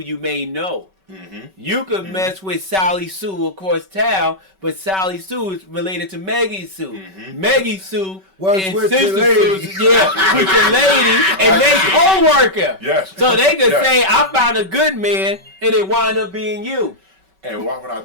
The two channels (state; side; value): late; left; 5.3 ms